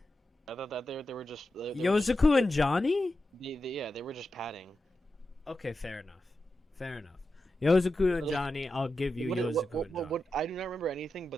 I thought that they were just. Yozuku and Johnny? They were just padding. Okay, fair enough. Fair enough. Yozuku and Johnny, I'll give you Yozuku and Johnny. I do not remember anything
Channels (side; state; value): both; normal; correlation 0.90